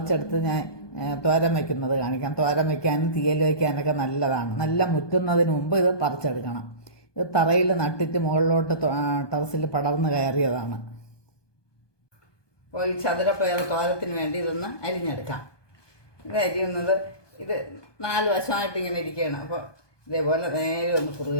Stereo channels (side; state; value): right; late; 1.2 ms